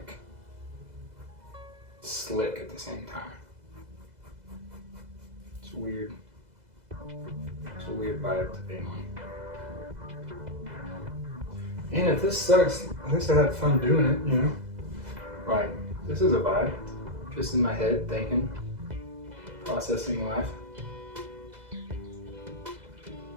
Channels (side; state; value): left; late; 2.0 ms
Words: slick at the same time. It's weird. It's a weird vibe to be on. And if this sucks, at least I had fun doing it, you know? Like, this is a vibe. Just in my head, thinking, processing life.